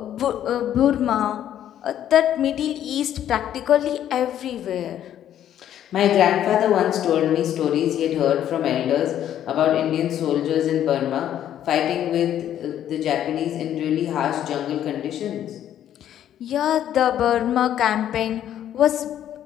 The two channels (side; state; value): right; quieter; 10.9 dB